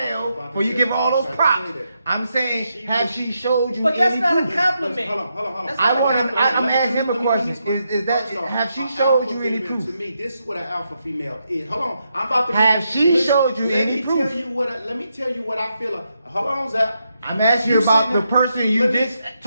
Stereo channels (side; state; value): both; inverted; correlation -0.82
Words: Before you give her all those props. I'm saying, have she showed you? But that's any not a proof? compliment. Hold on. That's I not a want. compliment. I'm asking him a question. Is that First off, have she an showed alpha you any female, proof? To me, this is what an alpha female is. Hold on, I'm about to. Have she listen, showed you let any me proof? Tell you what let me tell you what I feel. Hold on, Zach. I'm asking you You about sitting the there- person you let me- just